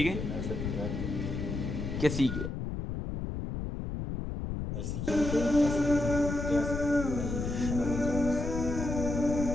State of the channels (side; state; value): left; noise; rumble, 4 dB below the sound